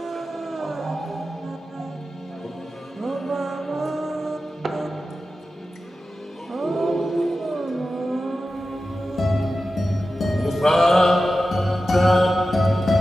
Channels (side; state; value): both; normal; correlation 0.93